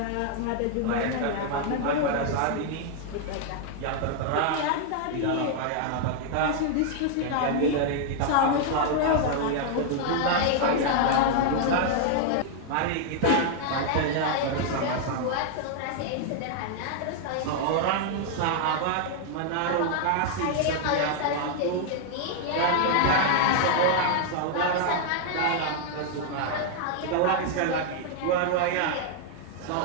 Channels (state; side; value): different; both; correlation 0.00